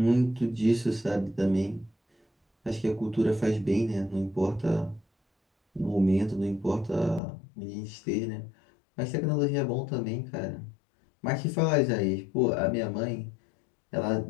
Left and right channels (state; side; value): drops out; right; at 7.2 s